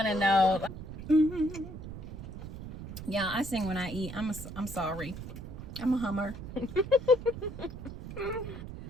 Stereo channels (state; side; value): noise; right; rumble, 10 dB below the sound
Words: to know. Yeah, I sing when I eat. I'm sorry. I'm a hummer.